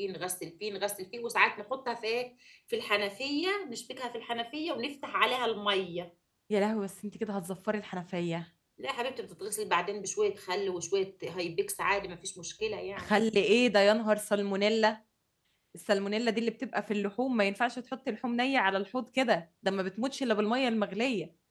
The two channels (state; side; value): identical; both; correlation 1.00